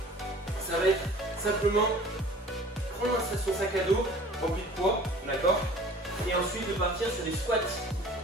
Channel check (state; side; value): normal; both; correlation 0.47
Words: ça va être simplement prendre son sac à dos rempli de poids, d'accord? Et ensuite de partir sur des squats,